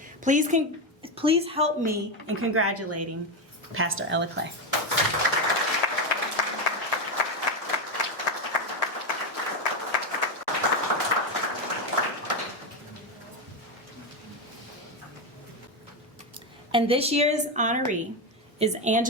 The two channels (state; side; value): normal; both; correlation 0.10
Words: Please help me in congratulating Pastor Ella Clay. And this year's honoree is